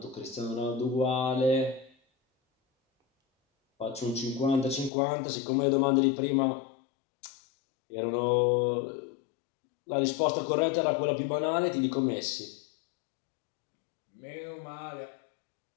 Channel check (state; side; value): drops out; right; at 4.9 s